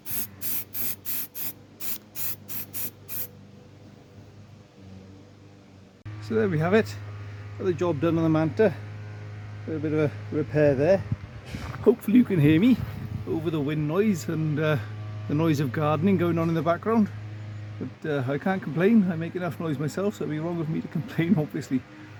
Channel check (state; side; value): identical; both; correlation 1.00